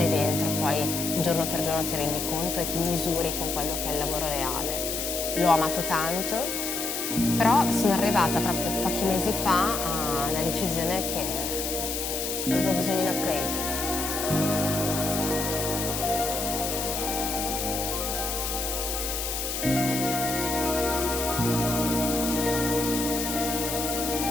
dentro poi giorno per giorno ti rendi conto e ti misuri con quello che è il lavoro reale. L'ho amato tanto, però sono arrivata proprio pochi mesi fa alla decisione che avevo bisogno di un upgrade.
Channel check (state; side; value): noise; left; hiss, 3 dB below the sound